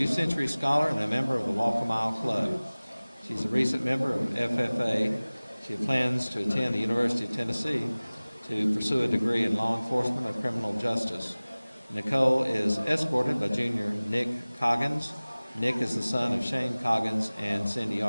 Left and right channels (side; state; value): both; inverted; correlation -0.99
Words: Century Scholar and a member of the Walk a Mile Club. She's a recent member of FFA. She plans to attend the University of Tennessee to pursue a degree in law enforcement or criminal justice. Nicole is escorted by junior Nick Coggins. Nick is the son of Shane Coggins and Cindy